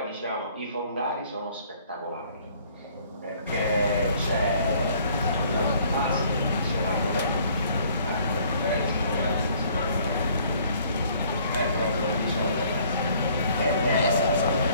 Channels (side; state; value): both; inverted; correlation -0.59